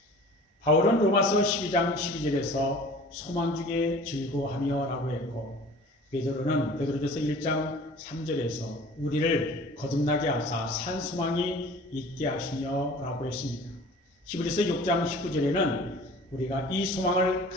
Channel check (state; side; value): normal; both; correlation 0.45